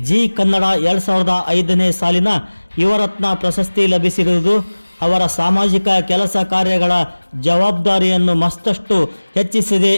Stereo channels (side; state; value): both; inverted; correlation -1.00